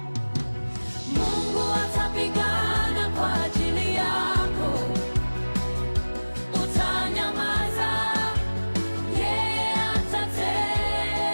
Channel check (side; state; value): both; inverted; correlation -1.00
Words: Mungu atapigana kwa ajili yako, utanyamaza, yeye